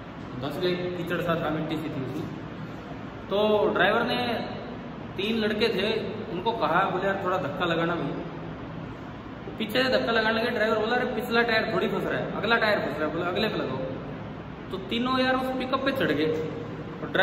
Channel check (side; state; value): both; identical; correlation 1.00